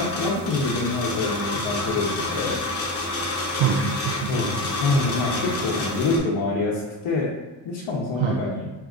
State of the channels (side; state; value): both; normal; correlation 0.22